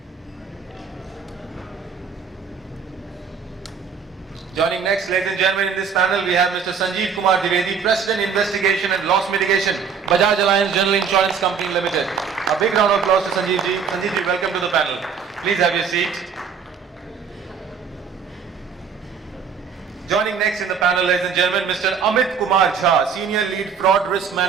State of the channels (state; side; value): quieter; left; 6.5 dB